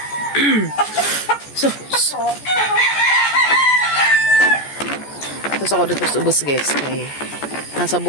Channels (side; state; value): right; late; 14 ms